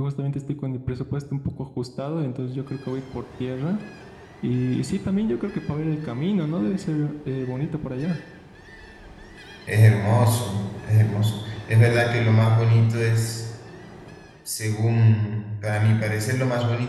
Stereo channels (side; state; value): both; identical; correlation 1.00